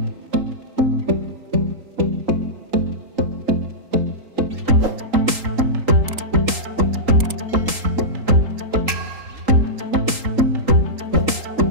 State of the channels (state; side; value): late; left; 3.8 ms